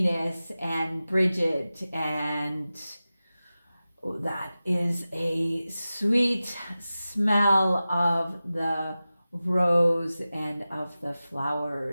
and Bridget, and that is a sweet smell of the rose and of the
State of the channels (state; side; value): inverted; both; correlation -0.95